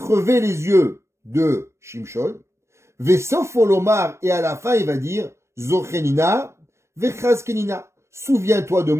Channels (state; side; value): late; left; 0.13 ms